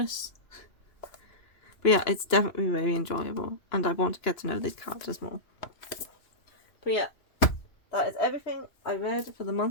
But yeah, it's definitely very enjoyable, and I want to get to know these characters more. But yeah, that is everything I read for the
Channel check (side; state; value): right; late; 2.9 ms